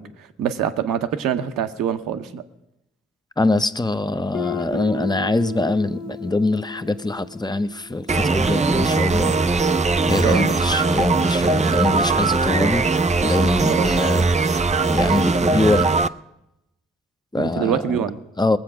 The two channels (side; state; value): both; normal; correlation 0.62